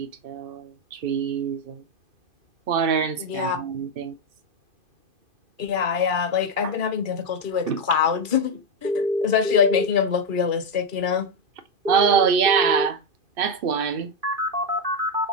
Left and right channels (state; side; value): late; left; 2.6 ms